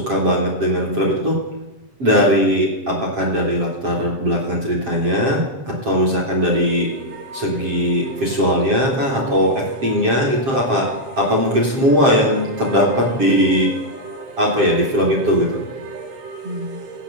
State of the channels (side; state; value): left; late; 7.5 ms